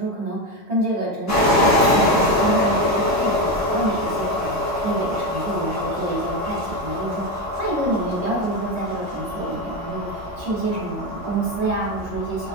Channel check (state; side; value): normal; both; correlation 0.14